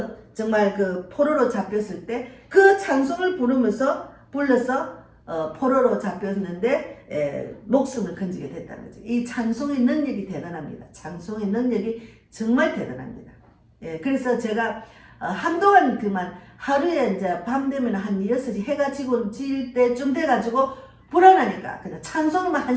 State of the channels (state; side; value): identical; both; correlation 1.00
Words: 정말 포로로 잡혔을 때 그 찬송을 불러서 포로로 잡혔는데 목숨을 건지게 됐다는 거죠. 이 찬송의 능력이 대단합니다. 찬송의 능력이 정말 대단합니다. 그래서 제가 한동안 그만 하루에 이제 밤 되면 한 6시 해가 질 때쯤 돼가지고 불안하니까 그냥 찬송만